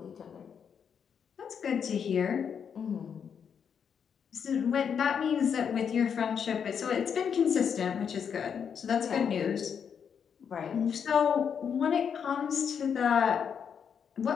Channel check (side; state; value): right; quieter; 7.3 dB